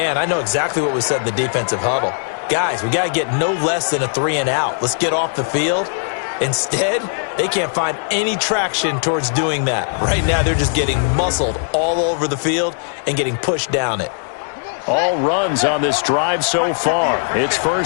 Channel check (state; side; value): silent; right; digital silence